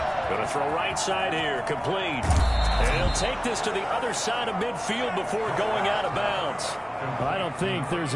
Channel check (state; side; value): identical; both; correlation 1.00